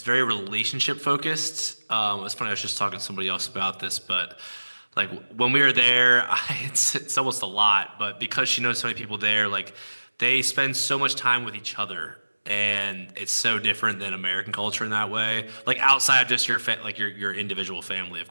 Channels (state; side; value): inverted; both; correlation -1.00